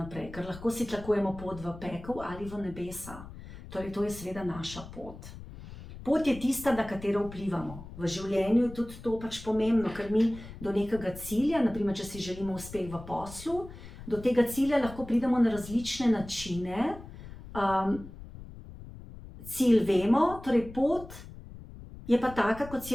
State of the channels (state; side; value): noise; left; rumble, 14 dB below the sound